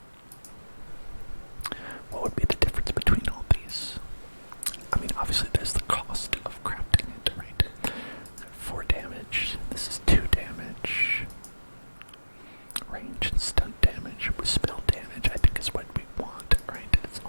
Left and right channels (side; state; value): both; inverted; correlation -1.00